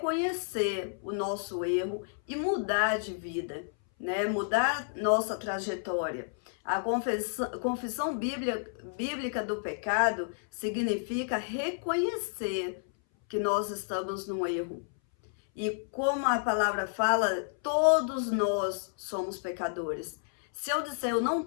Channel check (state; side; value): silent; right; 57 dB below the other